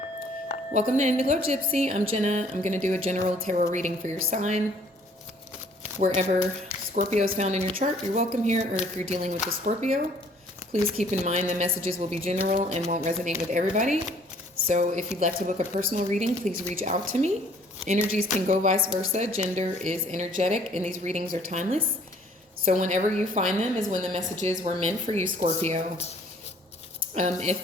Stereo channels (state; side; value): normal; both; correlation 0.58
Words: Welcome to Gypsy. I'm Jenna. I'm going to do a general tarot reading for your sign. Wherever Scorpio is found in your chart, you're welcome here. Or if you're dealing with a Scorpio, please keep in mind the messages will be general and won't resonate with everybody. So if you'd like to book a personal reading, please reach out to me. Energies can go vice versa. Gender is energetic, and these readings are timeless. So whenever you find them is when the messages were meant for you, Scorpio.